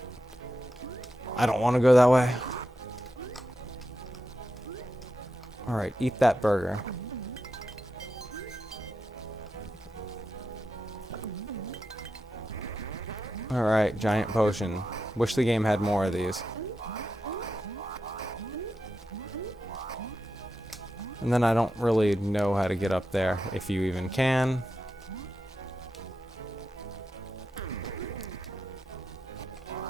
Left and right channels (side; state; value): both; normal; correlation 0.88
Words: I don't want to go that way. Alright, eat that burger. Alright, giant potion. Wish the game had more of these. And then I don't really know how to get up there, if you even can.